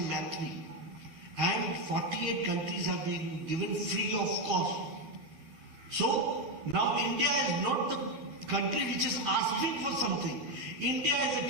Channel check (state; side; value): late; left; 12 ms